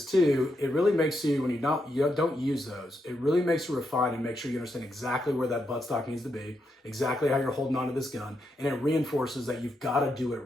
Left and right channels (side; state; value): both; normal; correlation 0.82